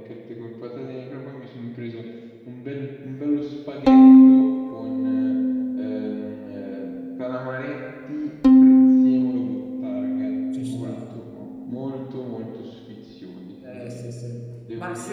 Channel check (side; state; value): both; identical; correlation 1.00